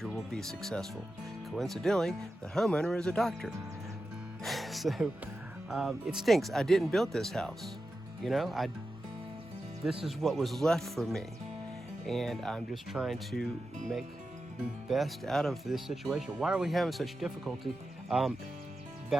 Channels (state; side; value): normal; both; correlation 0.91